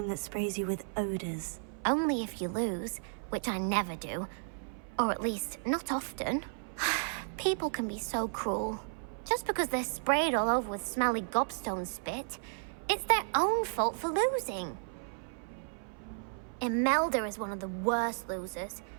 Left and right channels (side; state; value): left; silent; 55 dB below the other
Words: that sprays you with odors. Only if you lose, which I never do. Or at least, not often. People can be so cruel. Just because they're sprayed all over with smelly gobstone spit, it's their own fault for losing. Imelda is one of the worst losers.